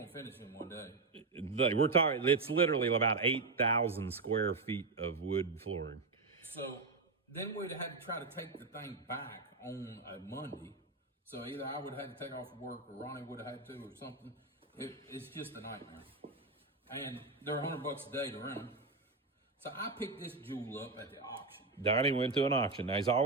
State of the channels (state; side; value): quieter; left; 3.8 dB